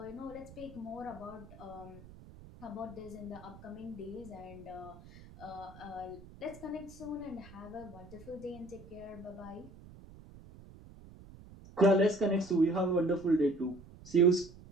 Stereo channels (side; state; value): right; noise; rumble, 18 dB below the sound